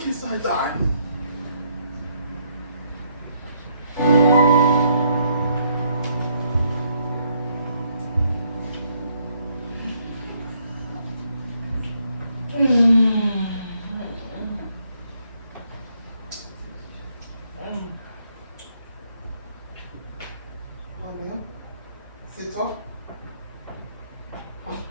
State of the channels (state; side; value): inverted; both; correlation -0.71